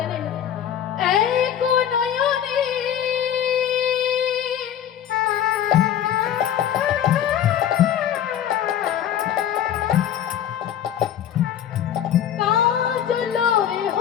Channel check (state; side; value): quieter; right; 10.0 dB